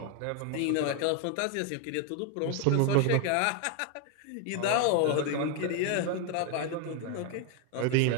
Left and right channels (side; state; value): both; different; correlation 0.01